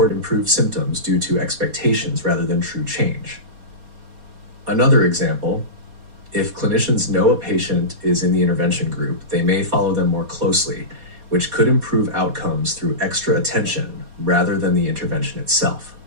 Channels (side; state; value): left; late; 4.2 ms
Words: improved symptoms due to expectations rather than true change. Another example, if clinicians know a patient is in the intervention group, they may follow them more closely, which could improve outcomes through extra attention rather than the intervention itself.